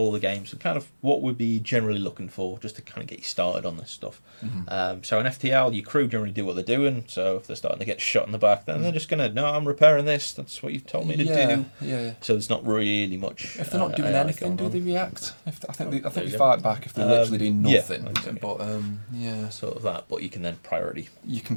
the games and kind of what we'd be generally looking for, just to kind of get you started on this stuff. So in FTL, your crew generally do what they're doing. So if they're starting to get shot in the back, then they're just going to, no, I'm repairing this. That's what you've told me to do. So there's not really much. If they're not doing anything, do they react? I think they fight back if they're literally doing nothing. But sort of that. But you can then priority. You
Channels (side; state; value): both; inverted; correlation -1.00